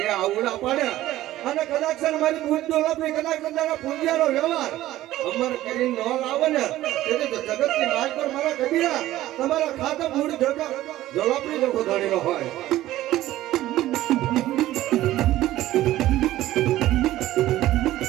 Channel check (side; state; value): left; quieter; 15.0 dB